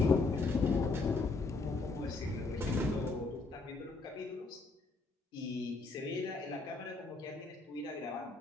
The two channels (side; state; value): right; quieter; 3.7 dB